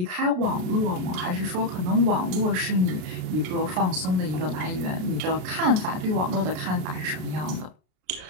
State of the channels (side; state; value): left; late; 33 ms